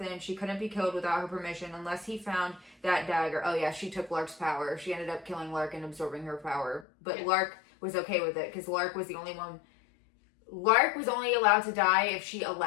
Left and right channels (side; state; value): right; drops out; at 6.9 s